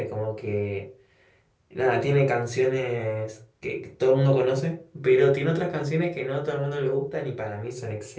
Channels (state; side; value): identical; both; correlation 1.00